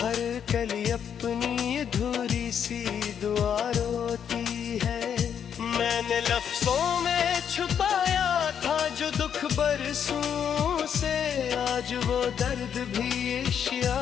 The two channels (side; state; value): right; quieter; 8.2 dB